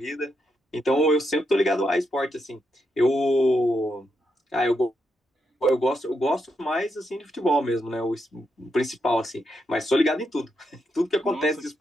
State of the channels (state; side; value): normal; both; correlation 0.82